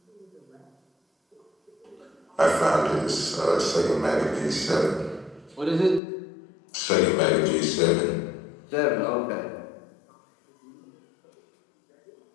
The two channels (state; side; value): drops out; right; at 6.0 s